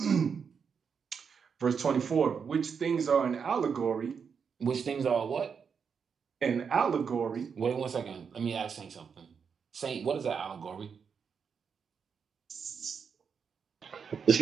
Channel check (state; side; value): quieter; left; 6.4 dB